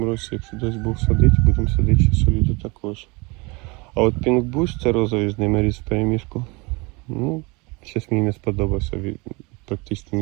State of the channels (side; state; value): left; quieter; 27.2 dB